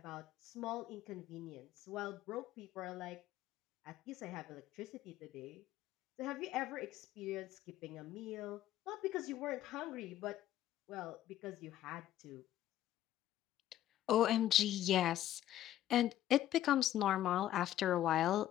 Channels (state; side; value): quieter; right; 12.8 dB